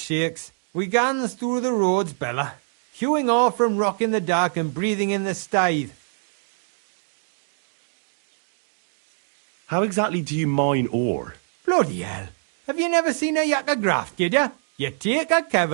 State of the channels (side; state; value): left; silent; digital silence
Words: We gans through the roads, Bella. Hewing off from rock in the dark and breathing in the stithe. How exactly do you mine ore? Bloody hell. Have you never seen a yakker graft, kidder? You take a